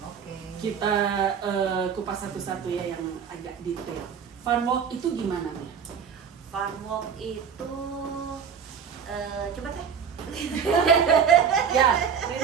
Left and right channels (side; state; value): left; quieter; 7.1 dB